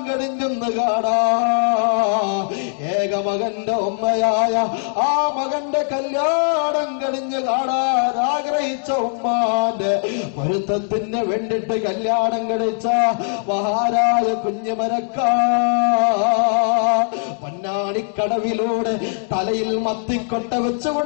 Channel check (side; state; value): right; silent; digital silence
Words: കഴിഞ്ഞൊന്ന് കാണാ. ഏക മകന്റെ ഉമ്മയായ ആ മകന്റെ കല്യാണം കഴിഞ്ഞ് കാണാൻ ആഗ്രഹിച്ച ഉമ്മാന്റെ പൊരുത്തത്തിന് വേണ്ടിട്ട് കല്യാണം കഴിച്ച മഹാരായ കുഞ്ഞുമരക്കാ പൊന്നാണിക്കടവിലൂടെ തലയിൽ മത്തിക്കൊട്ട